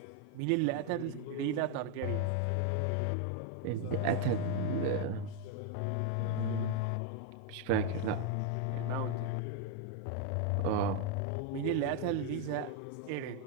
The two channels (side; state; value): both; different; correlation 0.01